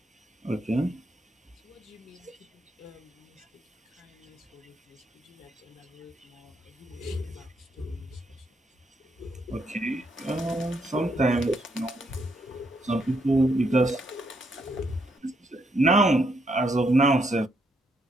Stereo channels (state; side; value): normal; both; correlation 0.76